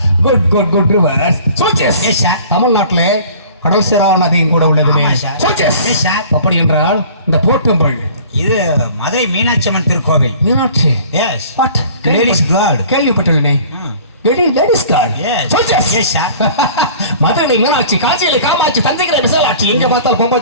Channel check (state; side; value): inverted; both; correlation -0.47